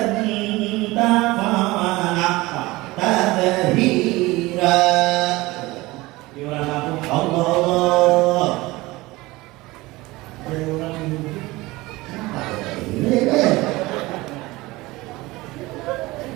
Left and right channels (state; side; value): quieter; left; 20.6 dB